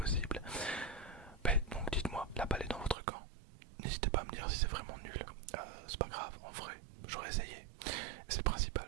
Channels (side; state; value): left; drops out; at 3.0 s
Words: Ben, donc dites-moi, la balle est dans votre camp. N'hésitez pas à me dire si c'est vraiment nul. C'est pas grave, en vrai, j'aurais essayé. C'est le principal,